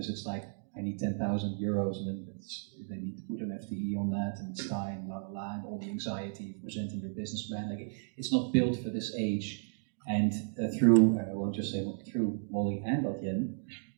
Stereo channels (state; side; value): silent; left; digital silence